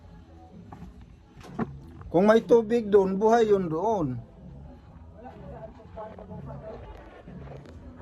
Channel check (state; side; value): identical; both; correlation 1.00